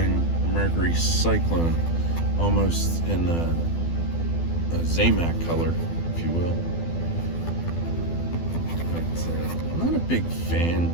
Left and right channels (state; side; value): late; right; 12 ms